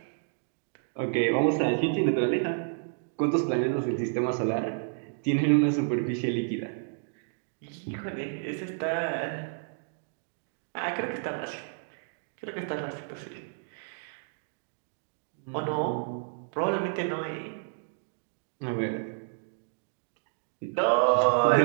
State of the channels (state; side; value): silent; left; digital silence